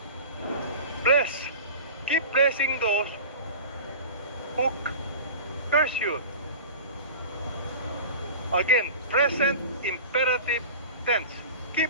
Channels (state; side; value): inverted; both; correlation -0.35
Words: Bless. Keep blessing those who curse you. Again, present imperative tense.